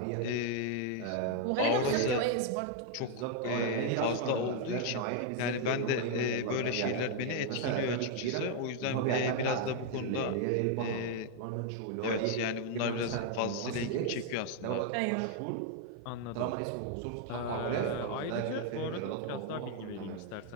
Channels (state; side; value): different; both; correlation 0.00